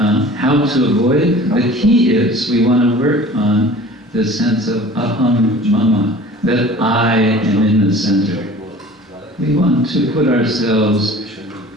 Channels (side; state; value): both; normal; correlation 0.44